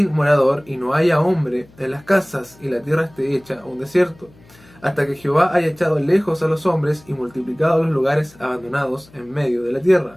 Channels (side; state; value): left; noise; hum, 27 dB below the sound